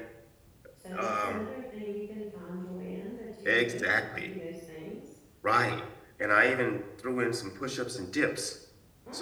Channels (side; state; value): both; identical; correlation 1.00